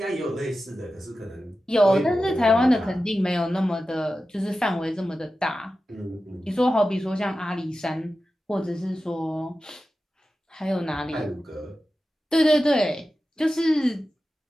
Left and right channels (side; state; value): both; normal; correlation 0.93